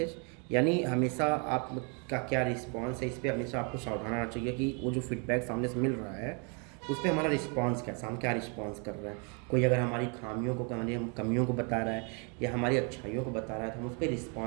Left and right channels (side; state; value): left; quieter; 36.4 dB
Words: यानी हमेशा आपका क्या रिस्पॉन्स है, इस पर हमेशा आपको सावधान रहना चाहिए कि वो जो फीडबैक सामने से मिल रहा है उस पर हमारा रिस्पॉन्स कैसा, हम क्या रिस्पॉन्स कर रहे हैं। कोई अगर हमारी खामियों को, हमारी कमियों को बता रहा है या हमारी अच्छाइयों को बता रहा है, तो हम उस पर